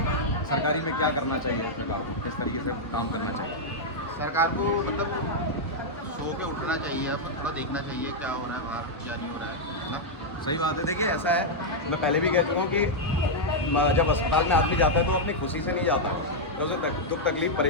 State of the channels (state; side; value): normal; both; correlation -0.04